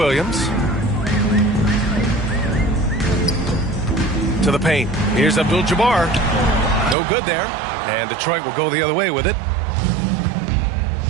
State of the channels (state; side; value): drops out; left; at 7.0 s